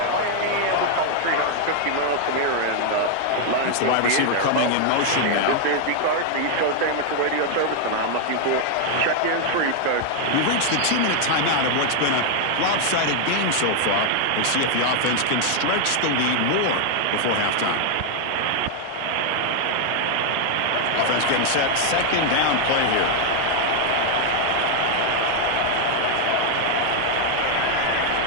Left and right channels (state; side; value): different; both; correlation 0.00